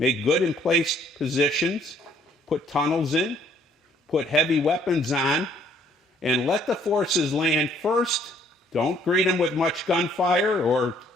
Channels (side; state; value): both; normal; correlation 0.63